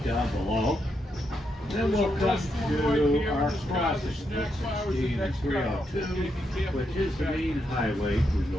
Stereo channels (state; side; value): normal; both; correlation 0.81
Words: down below. Then we'll come to our crossing, 116 and 302, which is the main highway to